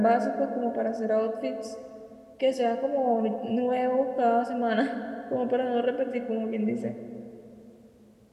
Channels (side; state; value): both; identical; correlation 1.00